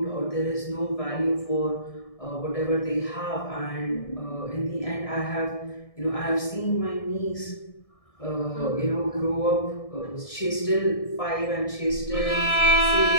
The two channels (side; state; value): right; late; 1.6 ms